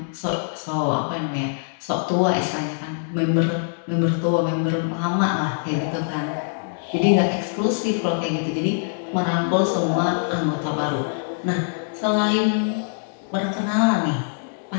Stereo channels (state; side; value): silent; right; 63 dB below the other